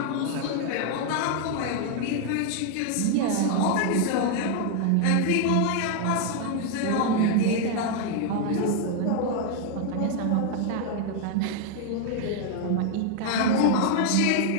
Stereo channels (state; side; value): different; both; correlation 0.00